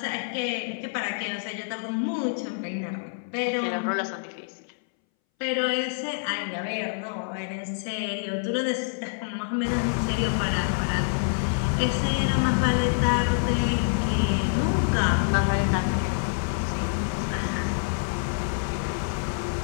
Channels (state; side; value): silent; right; 60 dB below the other